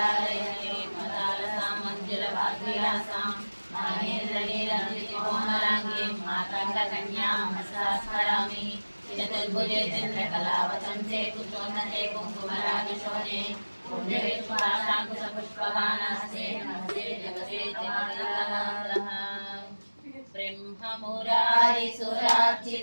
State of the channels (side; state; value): both; inverted; correlation -1.00